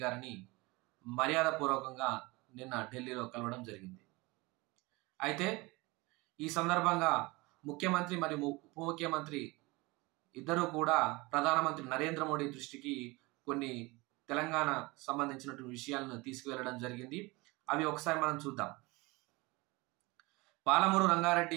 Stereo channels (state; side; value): quieter; left; 23.8 dB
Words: గారిని మర్యాదపూర్వకంగా నిన్న ఢిల్లీలో కలవడం జరిగింది. అయితే ఈ సందర్భంగా ముఖ్యమంత్రి మరియు ఉప ముఖ్యమంత్రి ఇద్దరు కూడా ప్రధానమంత్రి నరేంద్ర మోడీ దృష్టికి కొన్ని తెలంగాణ సంబంధించినటువంటి విషయాలను తీసుకువెళ్ళడం జరిగింది. అవి ఒకసారి మనం చూద్దాం. పాలమూరు రంగారెడ్డి